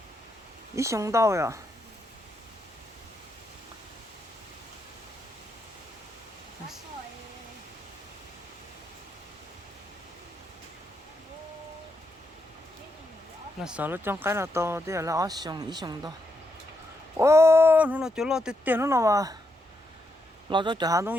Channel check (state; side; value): normal; both; correlation 0.81